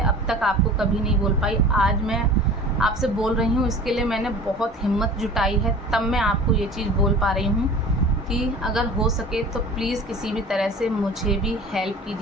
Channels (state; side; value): normal; both; correlation 0.41